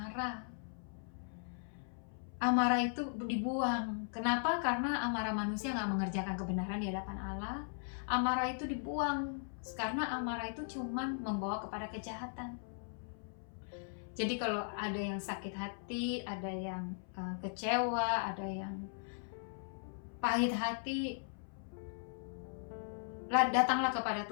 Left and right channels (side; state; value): right; silent; 52 dB below the other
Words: Amarah itu dibuang. Kenapa? Karena amarah manusia gak mengerjakan kebenaran di hadapan Allah. Amarah itu dibuang, karena amarah itu cuman membawa kepada kejahatan. Jadi kalau ada yang sakit hati, ada yang kecewa, ada yang pahit hati, datanglah kepada